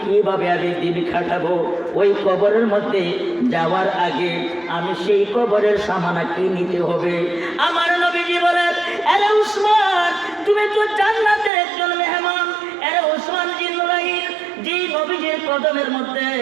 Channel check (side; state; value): left; drops out; at 11.5 s